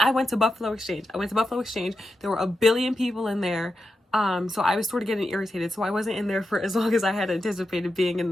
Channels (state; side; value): normal; both; correlation 0.89